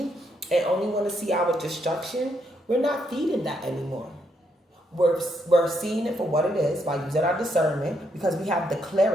and only want to see our destruction, we're not feeding that anymore. We're seeing it for what it is by using our discernment, because we have the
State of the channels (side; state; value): both; normal; correlation 0.76